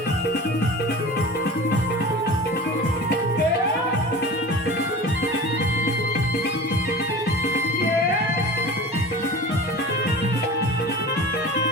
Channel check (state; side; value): normal; both; correlation 0.35